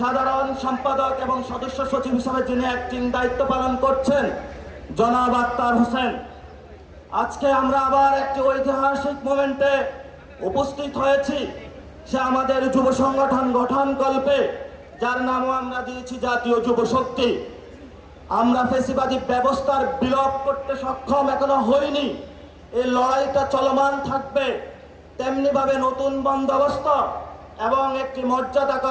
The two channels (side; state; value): both; identical; correlation 1.00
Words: সম্পাদক এবং সদস্য সচিব হিসাবে যিনি অ্যাক্টিং দায়িত্ব পালন করছেন, জনাব আক্তার হোসেন। আজকে আমরা আবার একটি ঐতিহাসিক মোমেন্টে উপস্থিত হয়েছি। সে আমাদের যুব সংগঠন গঠনকল্পে, যার নামও আমরা দিয়েছি জাতীয় যুব শক্তি। আমরা ফ্যাসিবাদী ব্যবস্থার বিলোপ করতে সক্ষম এখনো হইনি। এই লড়াইটা চলমান থাকবে। তেমনিভাবে নতুন বন্দোবস্ত এবং একটি